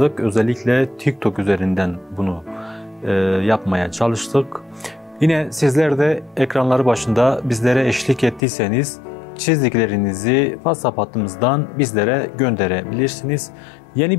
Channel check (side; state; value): right; drops out; at 8.4 s